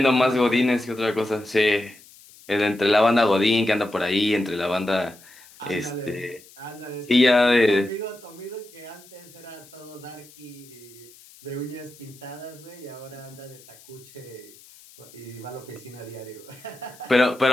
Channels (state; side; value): noise; left; hiss, 23 dB below the sound